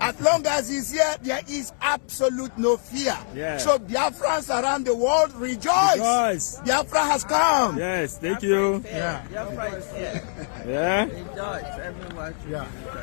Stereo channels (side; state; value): right; silent; digital silence